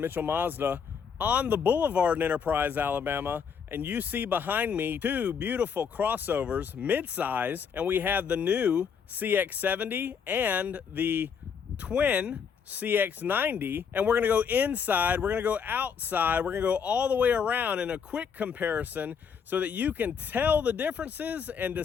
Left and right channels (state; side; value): quieter; right; 6.7 dB